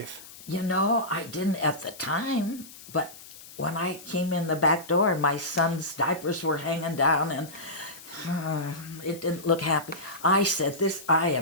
You know, I didn't at the time, but when I came in the back door and my son's diapers were hanging down and it didn't look happy, I said, I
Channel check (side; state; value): left; noise; hiss, 18 dB below the sound